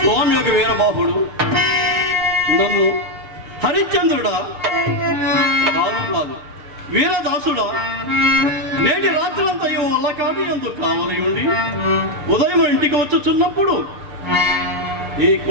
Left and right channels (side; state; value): left; late; 6.7 ms